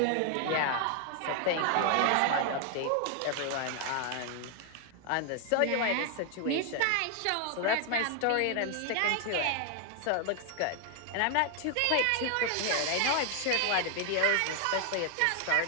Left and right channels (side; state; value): both; different; correlation 0.00